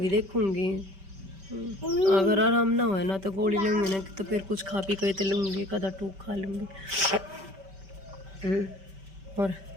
देखूंगी, अगर आराम ना हो ना तो गोली लूंगी ना, तो फिर कुछ खा पी के तो लूंगी, कदा टूक खा लूंगी। और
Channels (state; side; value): late; left; 5.2 ms